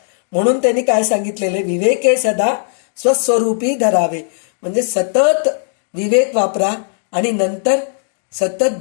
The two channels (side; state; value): right; silent; digital silence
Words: म्हणून त्यांनी काय सांगितलेले, विवेके सदा स्वस्वरूपी धरावे. म्हणजे सतत विवेक वापरा आणि नंतर सतत